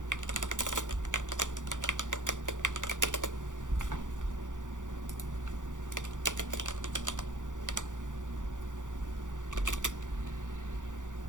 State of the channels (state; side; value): late; left; 0.87 ms